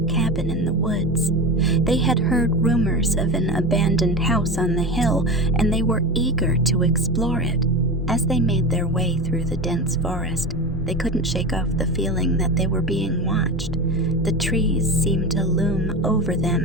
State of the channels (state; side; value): normal; both; correlation 0.25